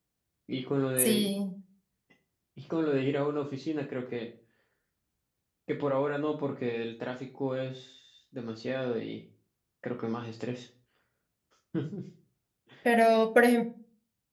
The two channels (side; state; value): both; identical; correlation 1.00